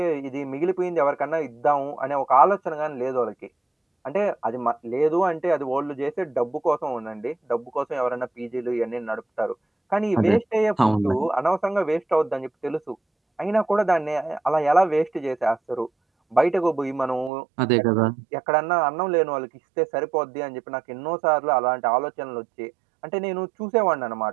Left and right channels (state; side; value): drops out; left; at 17.3 s